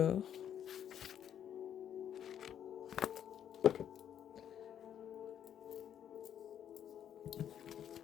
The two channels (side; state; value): right; quieter; 9.6 dB